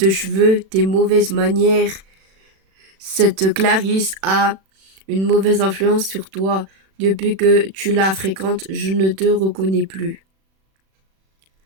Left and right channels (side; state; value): left; late; 36 ms